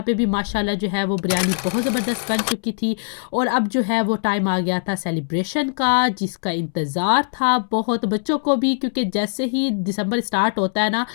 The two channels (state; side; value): silent; right; 65 dB below the other